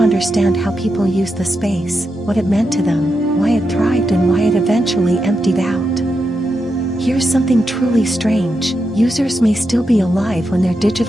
how people used the space, what it meant to them, why it thrived and why it eventually emptied out. Here's something truly strange: users may still be alive when their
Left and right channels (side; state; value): both; normal; correlation 0.86